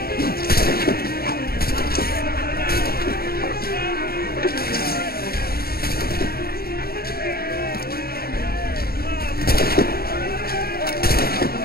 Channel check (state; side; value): late; right; 0.45 ms